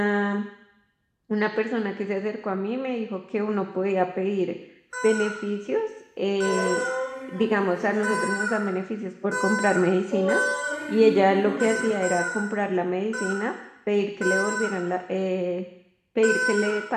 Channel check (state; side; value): identical; both; correlation 1.00